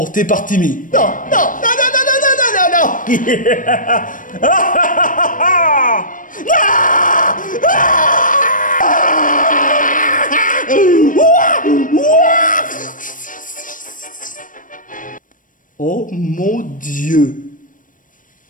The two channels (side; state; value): right; late; 0.38 ms